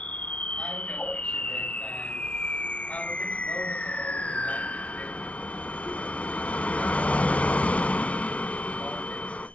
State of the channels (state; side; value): late; right; 0.064 ms